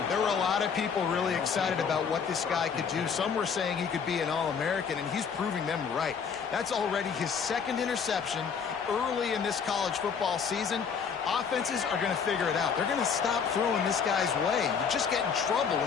There were a lot of people really excited about what this guy could do. Some were saying he could be an All-American, and he's proving them right. That's already his 2nd interception early in this college football season. Offenses are going to figure it out. They're going to stop throwing this guy's way. You just get in trouble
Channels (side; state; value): right; quieter; 6.4 dB